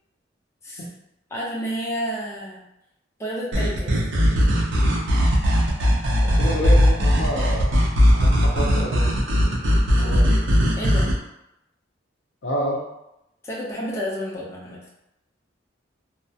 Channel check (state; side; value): normal; both; correlation 0.86